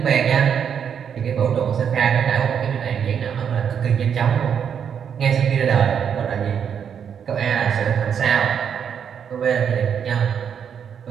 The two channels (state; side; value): quieter; left; 7.8 dB